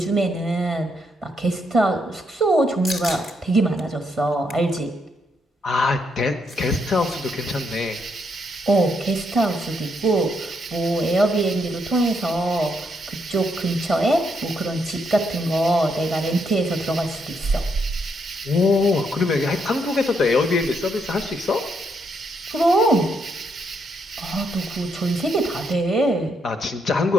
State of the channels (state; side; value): normal; both; correlation 0.77